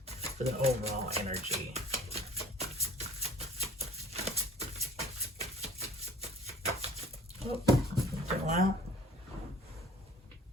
for the overall energy. Oh, go out.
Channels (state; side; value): normal; both; correlation 0.50